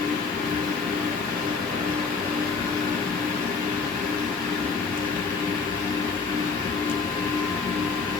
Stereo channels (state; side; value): quieter; right; 4.8 dB